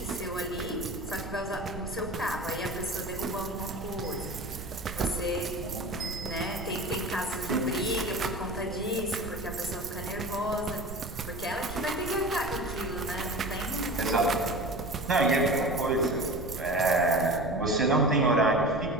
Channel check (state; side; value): noise; right; rumble, 11 dB below the sound